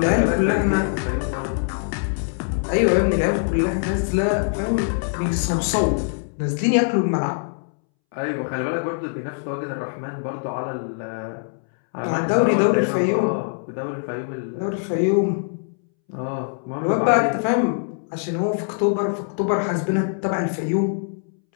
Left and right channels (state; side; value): silent; right; 64 dB below the other